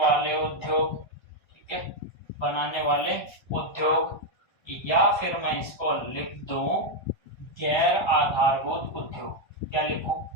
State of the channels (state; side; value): late; right; 1.3 ms